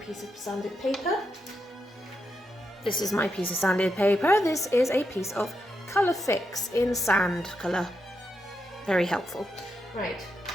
of sanded paper. This is my piece of sanded paper. This is a piece of colour fix in sand colour. Very helpful. Right,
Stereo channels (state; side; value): normal; both; correlation 0.84